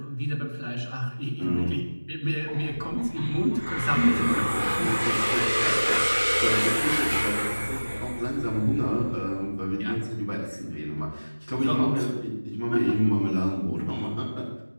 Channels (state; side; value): inverted; both; correlation -1.00